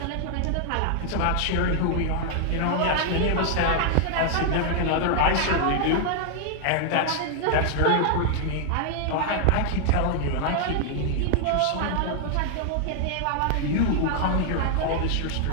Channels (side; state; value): both; different; correlation 0.00